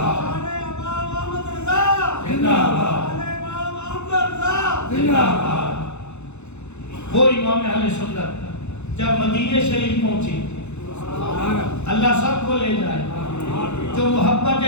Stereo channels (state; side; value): late; right; 0.82 ms